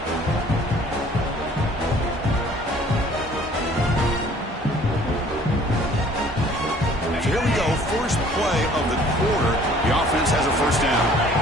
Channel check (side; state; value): both; normal; correlation 0.54